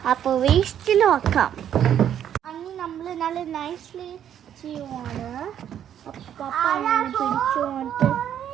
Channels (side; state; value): left; quieter; 9.8 dB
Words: അപ്പോൾ വേസ്റ്റിൽ വെക്കാം. അങ്ങനെ നമ്മൾ നല്ല നൈസ്ലി ചെയ്യുവാണ്. പപ്പ അങ്ങനെ പിടിച്ചുകൊണ്ട്